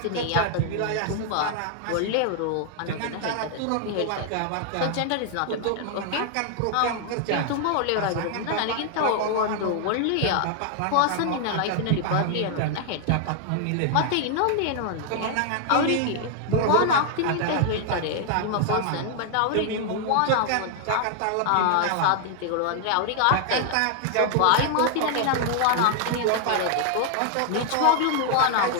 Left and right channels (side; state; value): both; different; correlation 0.00